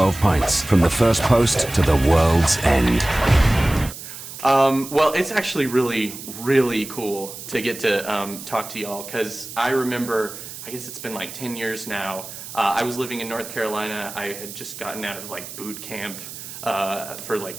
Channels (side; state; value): right; noise; hiss, 12 dB below the sound